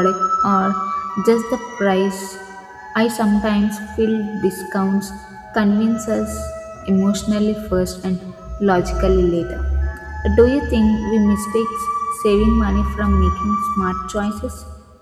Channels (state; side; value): identical; both; correlation 1.00